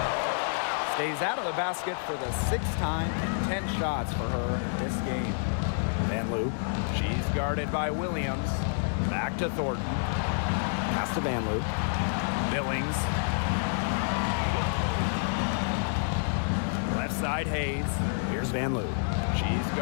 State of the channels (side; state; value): right; silent; digital silence